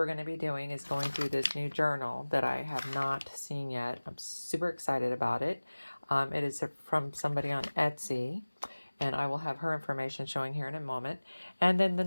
going to be doing is going through this new journal that I have not seen yet. I'm super excited about it. It is from somebody on Etsy, and I will have her information showing here in a moment. And then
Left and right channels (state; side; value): inverted; both; correlation -1.00